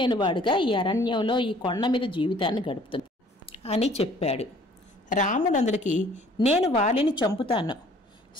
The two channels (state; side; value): normal; both; correlation 0.55